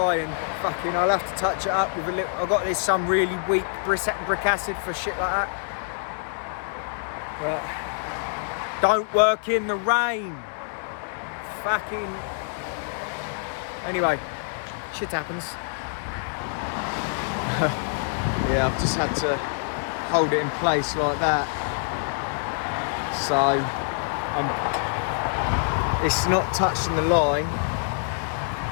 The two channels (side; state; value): right; silent; digital silence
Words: and fucking, I'll have to touch it up with a little. I've got this some really weak brick acid for shit like that. But don't work in the rain. Fucking. Anyway, shit happens. Yeah, I've just had to hold it in place like that. So it's not touching the line,